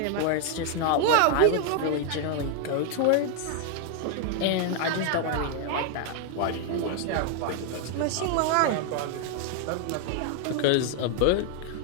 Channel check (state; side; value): different; both; correlation 0.00